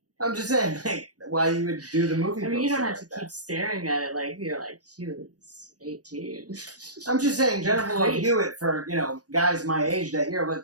I'm just saying, like, why you would do the movie. I mean, you don't have poster to like keep staring at it like you're like, she was 18. that. I'm just saying, Jennifer Love Great. Hewitt for guys my age that year,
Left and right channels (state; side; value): late; left; 0.68 ms